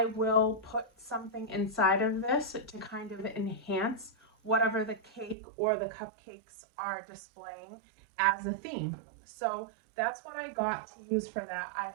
will put something inside of this to kind of enhance whatever the cake or the cupcakes are displaying as a theme. So that's what I got to use for that. I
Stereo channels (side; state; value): left; drops out; at 5.4 s